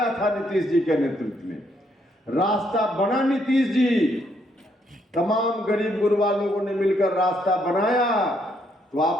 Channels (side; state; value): both; normal; correlation 0.73